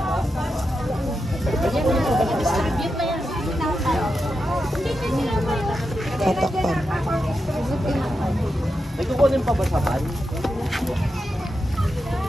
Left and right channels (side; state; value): both; normal; correlation 0.87